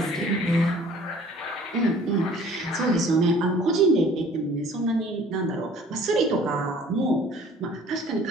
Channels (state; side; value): normal; both; correlation 0.52